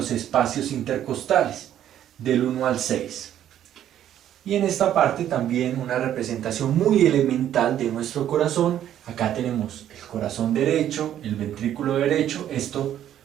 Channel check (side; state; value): left; quieter; 11.0 dB